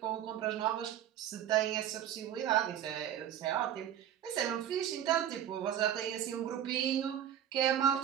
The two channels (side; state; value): left; quieter; 10.5 dB